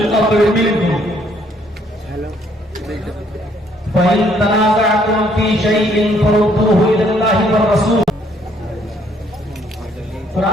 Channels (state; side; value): normal; both; correlation 0.66